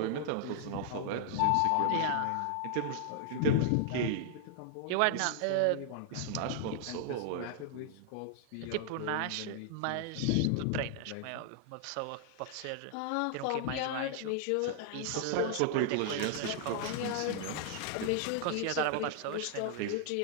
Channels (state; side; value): different; both; correlation -0.01